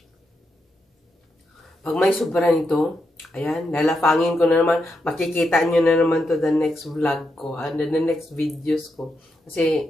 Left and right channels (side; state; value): both; normal; correlation 0.83